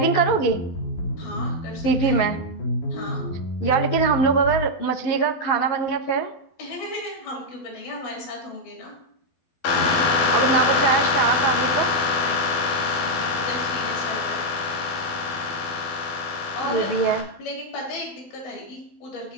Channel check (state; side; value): late; right; 12 ms